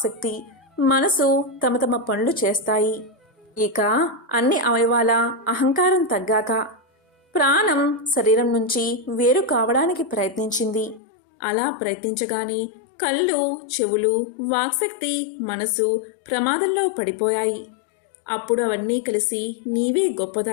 మనసు తమ తమ పనులు చేస్తాయి. ఇక అన్ని అవయవాల అహంకారం తగ్గాక ప్రాణం శరీరం నుంచి వేరు కావడానికి ప్రయత్నించింది. అలా ప్రయత్నించగానే కళ్ళు, చెవులు, వాక్శక్తి, మనసు ప్రమాదంలో పడిపోయాయి. అప్పుడు అవన్నీ కలిసి నీవే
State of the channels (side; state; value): right; drops out; at 11.0 s